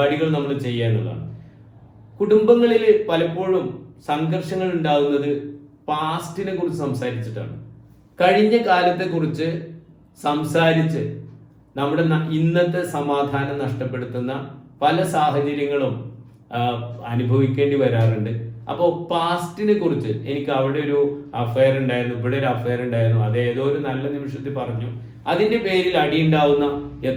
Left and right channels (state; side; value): identical; both; correlation 1.00